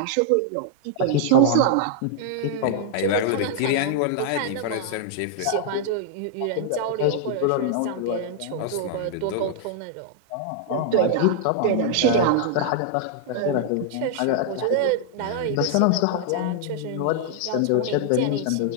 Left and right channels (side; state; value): both; different; correlation -0.01